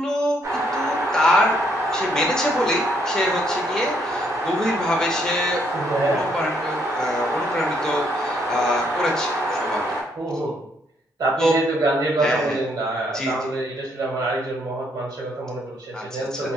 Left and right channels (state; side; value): normal; both; correlation 0.71